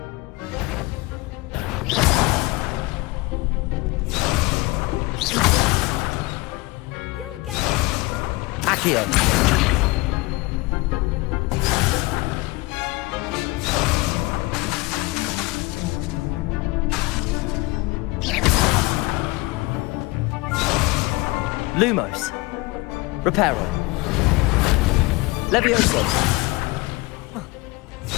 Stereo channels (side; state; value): right; quieter; 22.6 dB